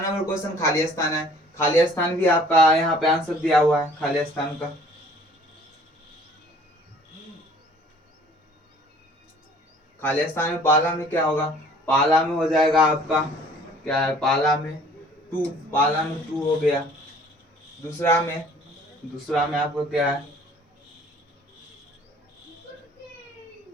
क्वेश्चन खाली स्थान है। खाली स्थान भी आपका यहाँ पे आंसर दिया हुआ है खाली स्थान का। खाली स्थान में पाला में क्या होगा? पाला में हो जाएगा आपका क्या है, पाला में 2, पाला में 2 हो गया। दूसरा में आपको क्या है?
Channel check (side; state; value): both; normal; correlation 0.54